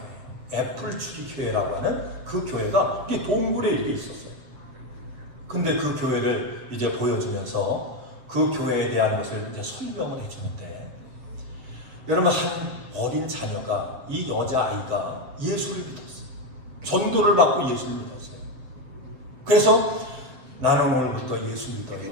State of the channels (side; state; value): left; late; 7.5 ms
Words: 애플트리 교회라고 하는 그 교회가 이렇게 동굴에 이렇게 있었어요. 근데 그 교회를 이제 보여주면서 그 교회에 대한 것을 이제 설명을 해주는데 여러분 한 어린 자녀가 이 여자아이가 예수를 믿었어요. 전도를 받고 예수를 믿었어요. 그래서 나는 오늘부터 예수 믿어요.